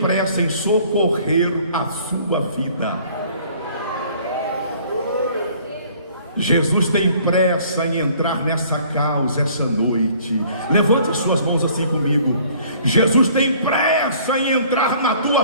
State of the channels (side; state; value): both; inverted; correlation -0.55